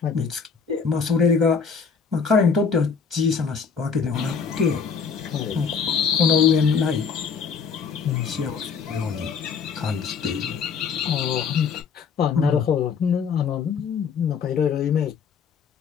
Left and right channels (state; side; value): quieter; right; 6.0 dB